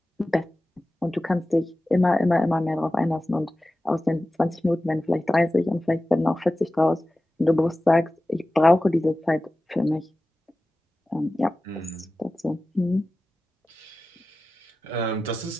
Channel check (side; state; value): both; normal; correlation 0.95